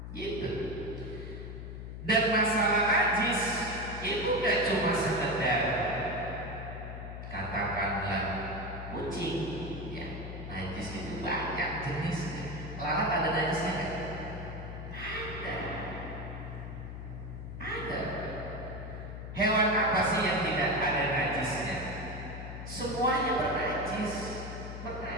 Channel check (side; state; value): left; noise; hum, 8 dB below the sound